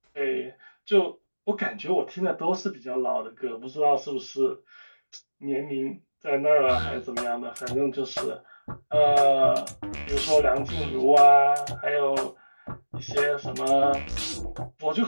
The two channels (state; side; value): inverted; both; correlation -1.00